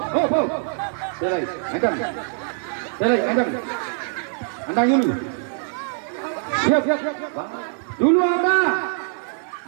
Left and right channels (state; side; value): silent; left; digital silence